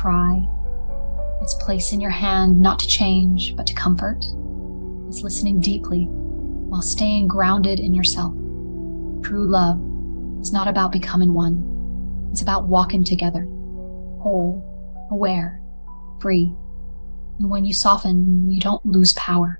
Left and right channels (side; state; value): both; inverted; correlation -1.00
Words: It's placing your hand not to change, but to comfort. It's listening deeply while staying grounded in yourself. True love is not about becoming one. It's about walking together. Whole, aware, free. And when you soften, you don't lose